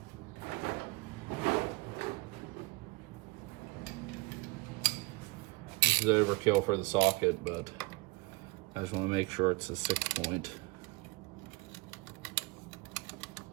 This is overkill for the socket, but I just want to make sure it's a 6 point.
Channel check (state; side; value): quieter; left; 24.5 dB